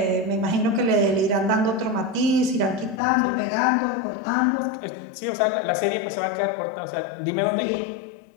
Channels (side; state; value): right; drops out; at 3.0 s